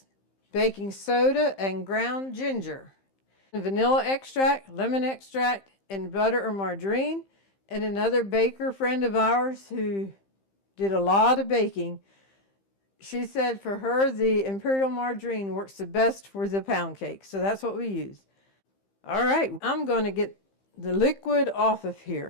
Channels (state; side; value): late; right; 15 ms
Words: baking soda and ground ginger, vanilla extract, lemon extract, and butter or margarine. And another baker friend of ours who did a lot of baking, she said for her the Imperial Margarine works the best for the pound cake. So that's what we use. All right, I'm going to get the liquid off of